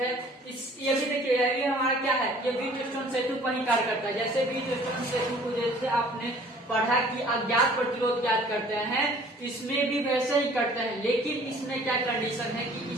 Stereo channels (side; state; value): both; normal; correlation 0.53